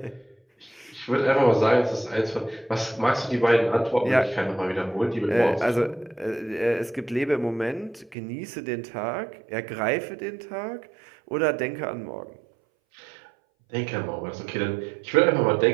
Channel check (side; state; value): left; drops out; at 8.2 s